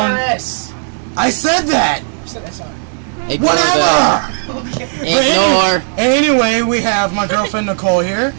I said that! You said SR. Whatever! Ignore. Anyway, we have my girlfriend Nicole here.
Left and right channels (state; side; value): silent; left; digital silence